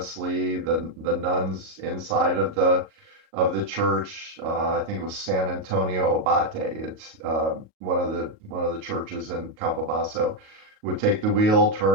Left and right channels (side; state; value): left; late; 37 ms